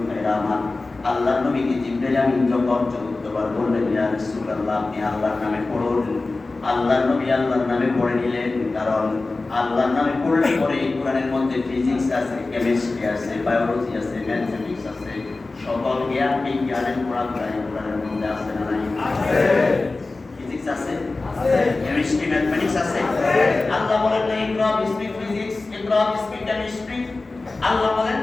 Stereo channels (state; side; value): quieter; right; 3.4 dB